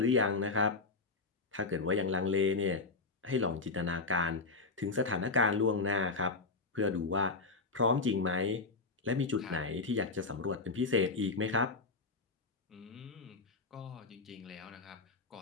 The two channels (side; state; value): right; quieter; 3.8 dB